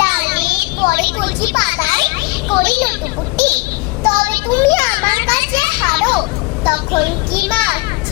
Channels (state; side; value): quieter; right; 24.6 dB